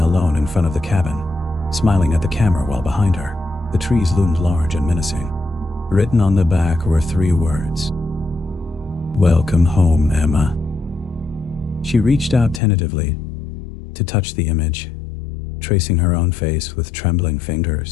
alone in front of the cabin, smiling at the camera while behind her, the trees loomed large and menacing. Written on the back were 3 words. "Welcome home, Emma." She reached out tentatively to touch the image, tracing her own face with trembling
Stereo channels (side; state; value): right; drops out; at 12.6 s